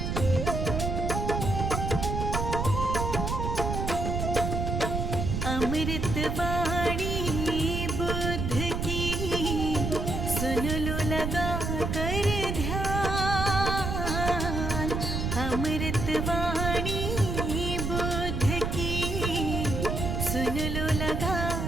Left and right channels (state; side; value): noise; right; rumble, 2 dB below the sound